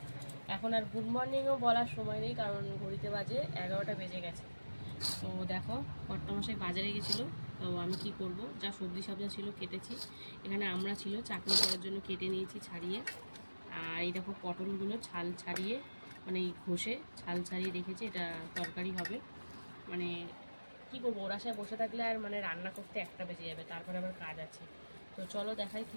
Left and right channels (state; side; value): inverted; both; correlation -1.00